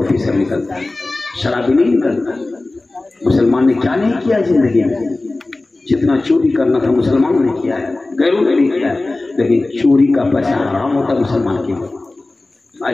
निकलता, शराबी नहीं निकलता। मुसलमान ने क्या नहीं किया जिंदगी में, जितना चोरी करना था मुसलमानों ने किया है, गैरों ने नहीं किया है। लेकिन चोरी का पैसा हराम होता है मुसलमान के।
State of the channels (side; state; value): right; quieter; 3.0 dB